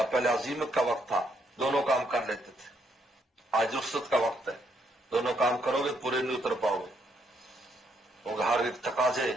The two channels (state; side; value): normal; both; correlation 0.73